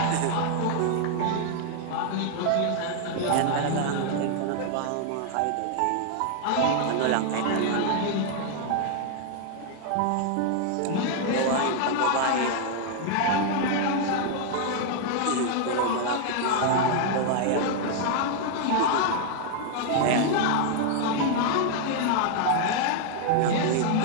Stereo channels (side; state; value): both; different; correlation 0.00